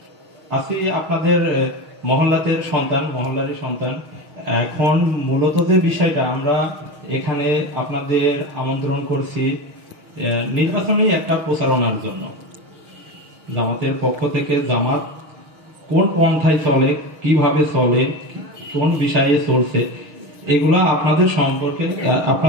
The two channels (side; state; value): left; late; 6.3 ms